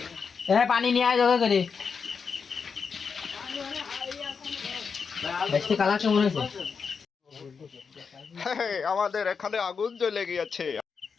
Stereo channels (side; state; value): right; quieter; 5.7 dB